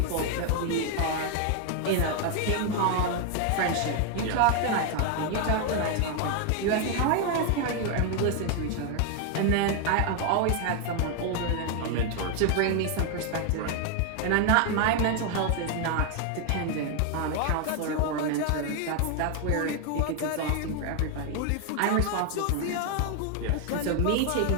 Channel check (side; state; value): both; different; correlation 0.00